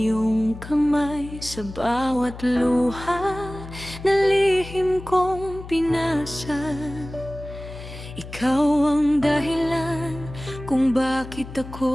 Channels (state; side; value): noise; left; hum, 13 dB below the sound